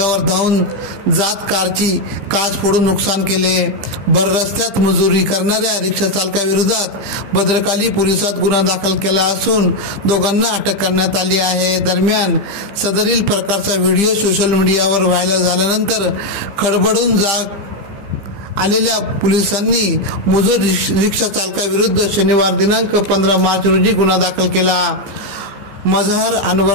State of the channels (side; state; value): left; late; 14 ms